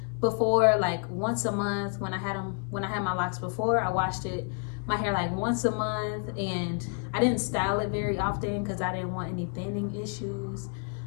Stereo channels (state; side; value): quieter; right; 39.9 dB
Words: before like once a month. When I had my locks before, I washed my hair like once a month, and I didn't style it very often because I didn't want any thinning issues.